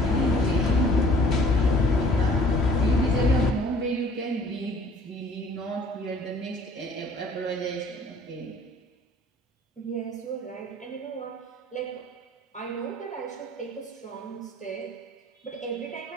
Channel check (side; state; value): both; normal; correlation 0.53